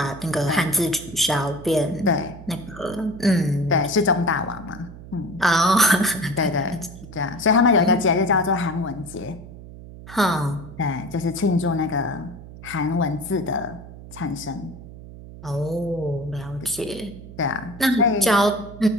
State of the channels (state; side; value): noise; right; hum, 15 dB below the sound